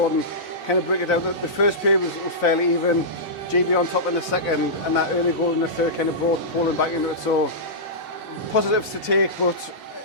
kind of break it down. The first period was fairly even. GB on top in the second, and that early goal in the third kind of brought Poland back into it. So positives to take, but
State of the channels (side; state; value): both; normal; correlation -0.15